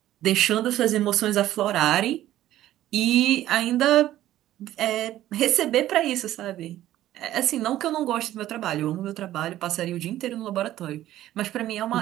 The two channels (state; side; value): quieter; left; 13.7 dB